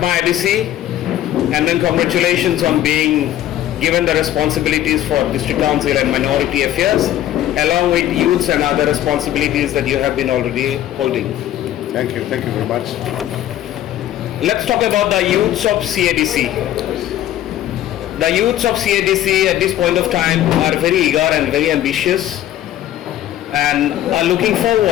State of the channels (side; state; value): right; quieter; 12.5 dB